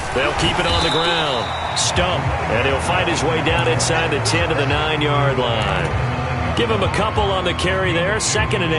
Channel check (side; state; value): both; identical; correlation 1.00